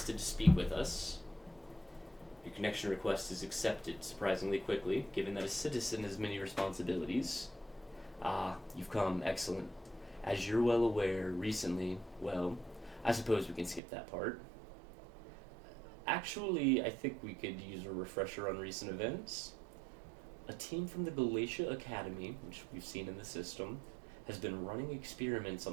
to speak with us. Your connection request is accepted surprisingly quickly, given that a citizen has many responsibilities. Ah, you've come. Excellent. As you're well aware, recently, well, I suppose we can skip that part. Actually, I think we could use a refresher on recent events. A team from the Galatia Academy, which we've seen in the system, has been running experiments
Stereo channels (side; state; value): left; drops out; at 13.8 s